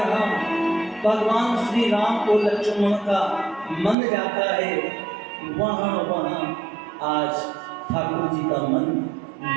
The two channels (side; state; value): left; drops out; at 4.0 s